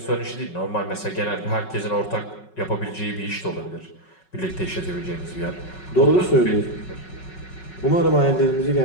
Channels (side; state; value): right; late; 5.4 ms